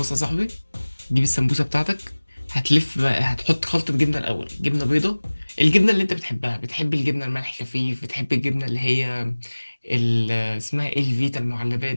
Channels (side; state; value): both; inverted; correlation -1.00